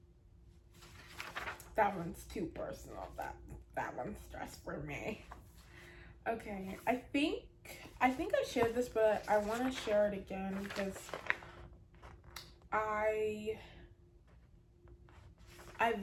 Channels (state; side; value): identical; both; correlation 1.00